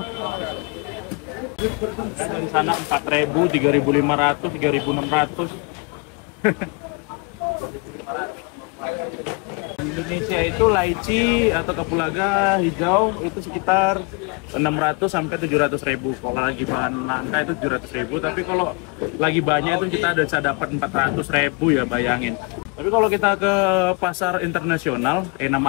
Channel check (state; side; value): quieter; right; 32.0 dB